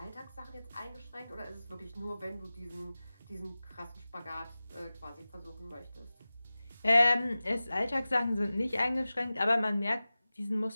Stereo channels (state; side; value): inverted; both; correlation -0.97